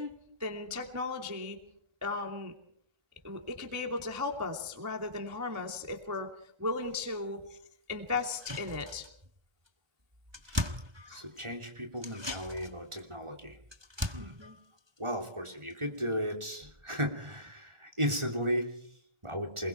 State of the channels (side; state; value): left; late; 1.2 ms